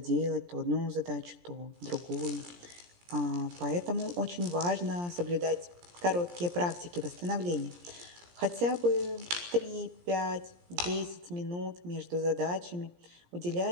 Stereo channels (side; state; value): left; late; 17 ms